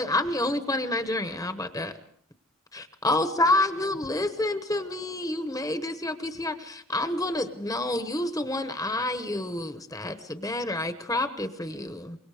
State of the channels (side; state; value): both; normal; correlation 0.53